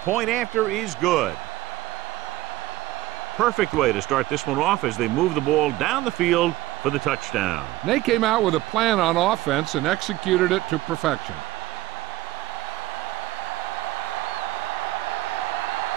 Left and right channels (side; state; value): left; quieter; 16.6 dB